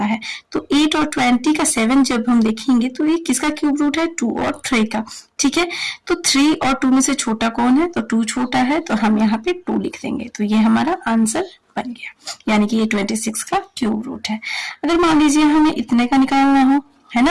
है। तो 8 और 20 का 7 जब हम देखेंगे तो ये किसका क्यूब रूट है, 2 और 3 का। ठीक है, तो 3 और 2 में से छोटा कौन है, तो 2 छोटा है। तो हम यहाँ पे 2 लिख देंगे। तो ये हमारा आंसर बन गया, यानी कि ये 26 का क्यूब रूट है। अगर मान लीजिए हमें इतने का निकालना हो, है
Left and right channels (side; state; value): both; identical; correlation 1.00